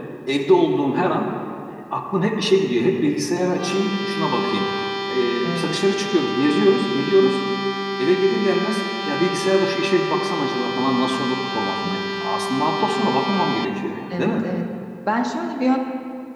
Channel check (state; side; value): identical; both; correlation 1.00